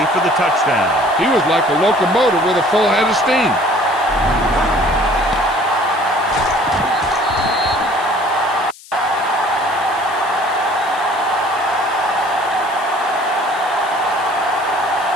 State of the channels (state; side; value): noise; left; hiss, 21 dB below the sound